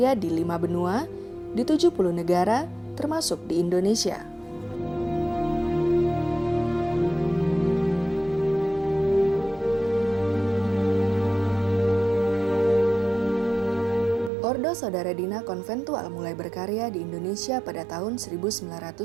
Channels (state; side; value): drops out; left; at 14.3 s